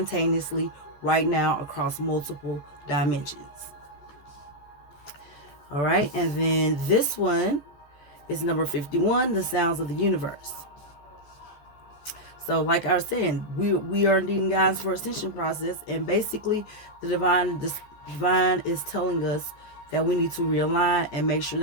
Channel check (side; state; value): right; late; 14 ms